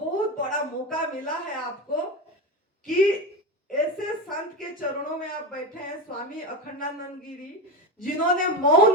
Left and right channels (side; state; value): both; normal; correlation 0.19